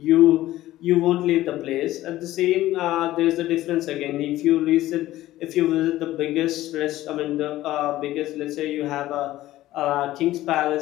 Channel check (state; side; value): quieter; right; 15.4 dB